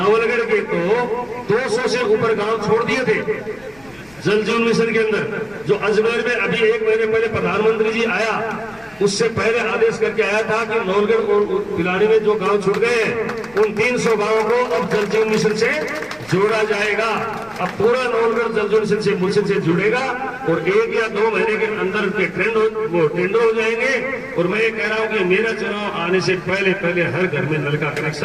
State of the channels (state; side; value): noise; left; rumble, 28 dB below the sound